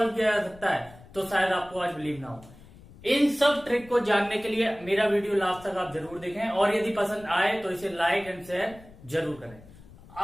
किया जा सकता है तो शायद आपको आज बिलीव ना हो। इन सब ट्रिक को जानने के लिए मेरा वीडियो लास्ट तक आप जरूर देखें और यदि पसंद आए तो इसे लाइक एंड शेयर जरूर करें।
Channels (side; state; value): left; noise; rumble, 21 dB below the sound